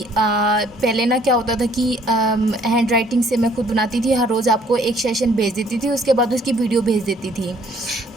पहले ना क्या होता था कि हैंड राइटिंग से मैं खुद बनाती थी। हर रोज़ आपको एक सेशन भेज देती थी, उसके बाद उसकी वीडियो भेज देती थी।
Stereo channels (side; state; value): both; normal; correlation 0.61